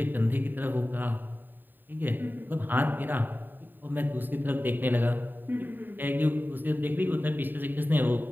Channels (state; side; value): late; left; 0.091 ms